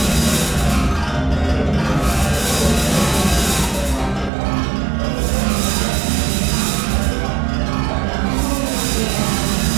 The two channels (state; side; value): drops out; left; at 4.3 s